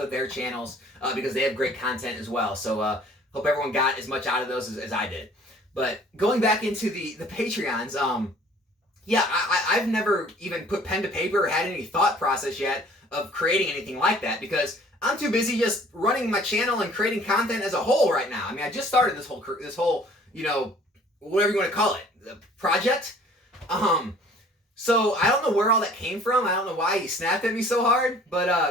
their channels because they have great content as well. So hope everyone got as much out of those as I did. But going back into the Patreons, I've never even put pen to paper or had any thought process yet of creating anything like that because I'm too busy just running my channel and creating content as a whole right now. I mean, I just started this whole whatever you want to call it, the project. So I don't know where all that came from. I don't know why he snapped at me so hard. But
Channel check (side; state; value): both; normal; correlation 0.53